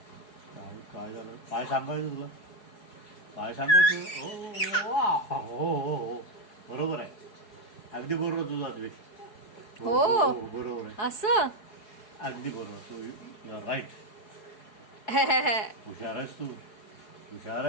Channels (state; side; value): late; right; 4.7 ms